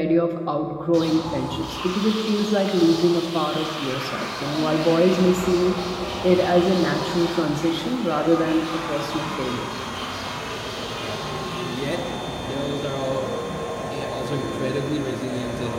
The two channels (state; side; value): identical; both; correlation 1.00